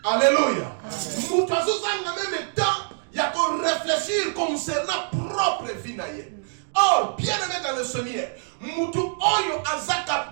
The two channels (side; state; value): left; silent; digital silence